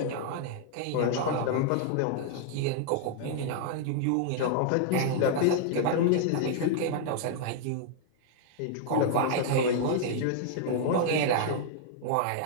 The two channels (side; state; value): both; different; correlation -0.01